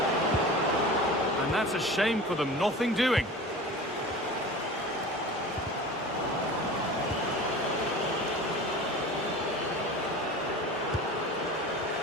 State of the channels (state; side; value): normal; both; correlation 0.36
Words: And that's a shame for them, nothing doing.